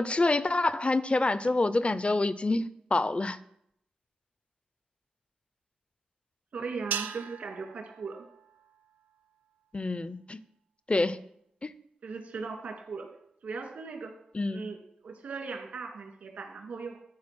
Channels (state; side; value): normal; both; correlation 0.88